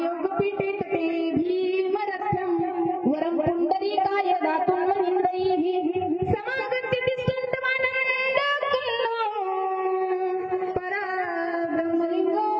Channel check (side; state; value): both; identical; correlation 1.00